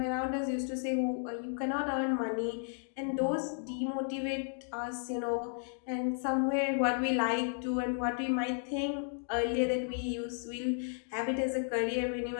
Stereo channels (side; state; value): right; silent; 55 dB below the other